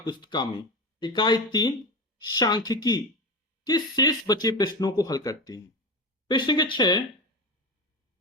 में इकाई 3 सांख्यिकी के शेष बचे प्रश्नों को हल करते हैं। प्रश्न के 6,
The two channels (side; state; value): both; normal; correlation 0.22